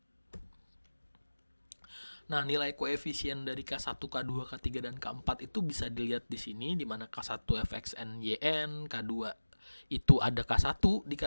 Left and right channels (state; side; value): inverted; both; correlation -1.00